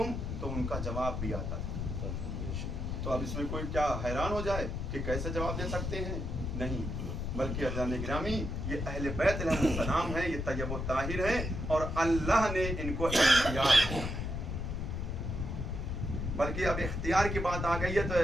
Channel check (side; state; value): left; noise; rumble, 3 dB below the sound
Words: تو ان کا جواب بھی آتا تھا. تو اب اس میں کوئی کیا حیران ہو جائے کہ کیسے جواب دے سکتے ہیں؟ نہیں, بلکہ عزیزان گرامی یہ اہل بیت علیہ السلام ہیں, یہ طیب و طاہر ہیں اور اللہ نے ان کو اختیار, بلکہ اب اختیار کی بات آ گئی ہے تو